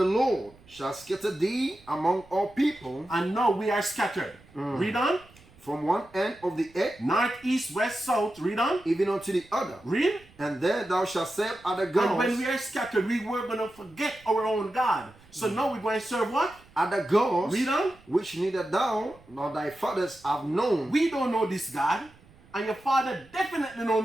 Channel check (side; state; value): right; noise; rumble, 26 dB below the sound